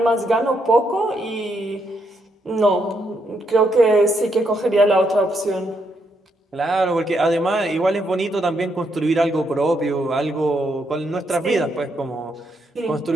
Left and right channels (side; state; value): both; normal; correlation 0.77